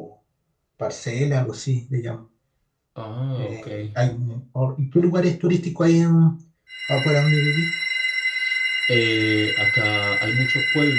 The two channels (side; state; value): both; identical; correlation 1.00